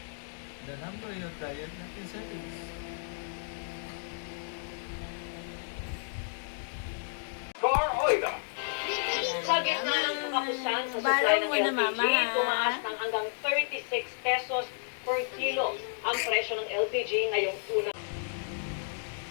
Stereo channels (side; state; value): right; silent; digital silence